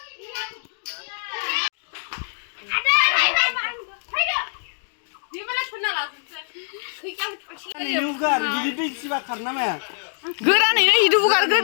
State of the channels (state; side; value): silent; right; digital silence